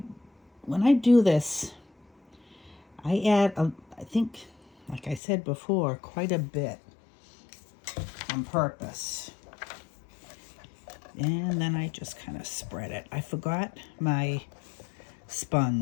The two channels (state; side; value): drops out; right; at 5.2 s